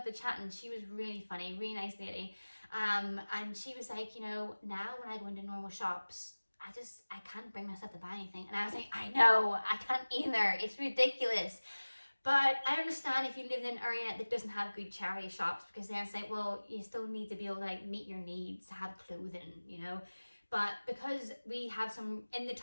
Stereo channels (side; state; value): both; inverted; correlation -1.00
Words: to chatting. She was really funny, really nice lady. And she was like, you know, now when I go into normal shops, I can't bring myself to buy anything. And I was like, I know, I can't either. It's ridiculous. But I understand if you live in an area that doesn't have good charity shops, because then it's like, well, you still need to be able to like meet your needs, have clothing, you know. But because we have some in the